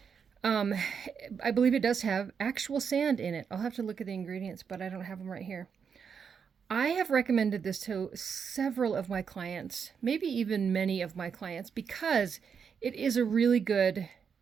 I believe it does have actual sand in it. I'll have to look at the ingredients, but I don't have them right here. I have recommended this to several of my clients, maybe even many of my clients, because it is a really good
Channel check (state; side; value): quieter; left; 6.6 dB